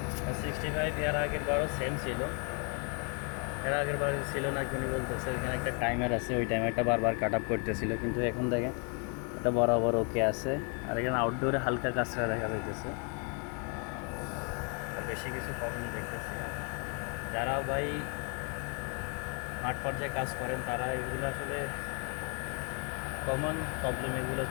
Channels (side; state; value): right; quieter; 38.0 dB